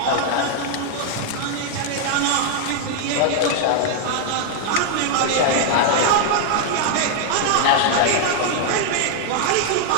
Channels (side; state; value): both; different; correlation 0.00